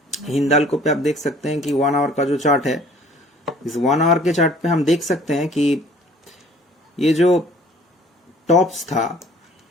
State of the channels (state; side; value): normal; both; correlation 0.54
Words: Hindalco पे आप देख सकते हैं कि 1 आवर का जो चार्ट है, इस 1 आवर के चार्ट पे हम देख सकते हैं कि ये जो टॉप्स था,